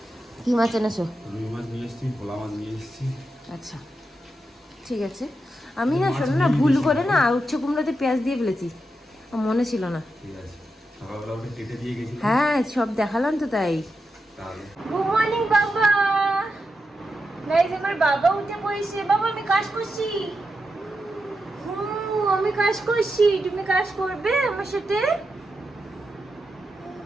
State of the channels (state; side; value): normal; both; correlation 0.87